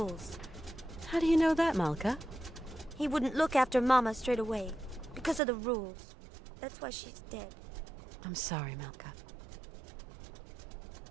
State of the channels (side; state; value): left; drops out; at 5.4 s